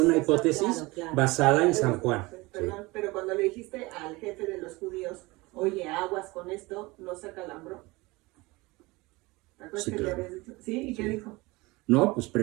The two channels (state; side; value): quieter; left; 22.8 dB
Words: hipótesis basada en San Juan. Perdón, pero cuando le dijiste al jefe de los judíos, oye, aguas con esto, ¿no se acalambró? ¿Te acuerdas Sí, que claro. le habías dicho? ¿Sí? ¿Y qué dijo? No, pues